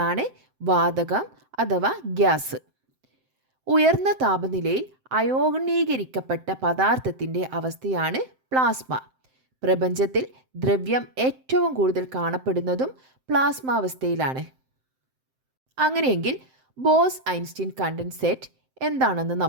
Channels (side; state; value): left; late; 7.7 ms